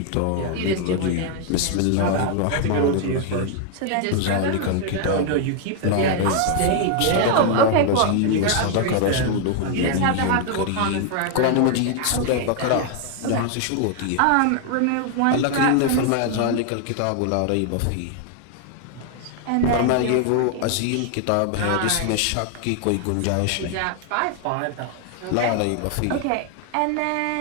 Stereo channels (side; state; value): both; different; correlation 0.00